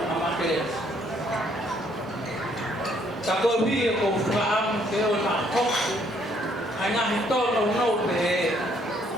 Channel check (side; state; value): both; normal; correlation 0.67